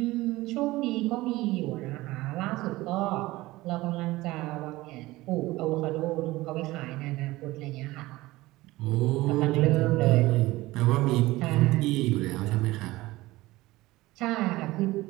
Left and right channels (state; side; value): quieter; left; 18.9 dB